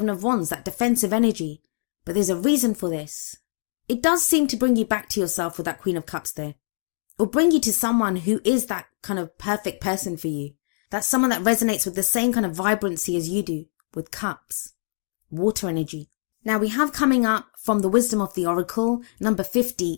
of Wands, that defensive energy. But there's a reason for this. It does seem to bring you back to yourself with that Queen of Cups there. Or bring you to someone who is that kind of perfect person for you. That's someone that resonates with the same kind of vibrancy as you do, with cups, water energy. Now we have coming up from the Wisdom of the Oracle, number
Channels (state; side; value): silent; right; digital silence